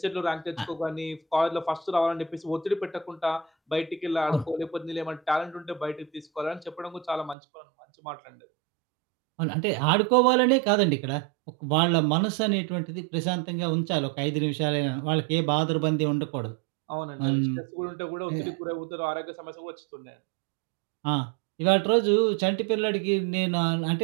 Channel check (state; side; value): drops out; left; at 7.4 s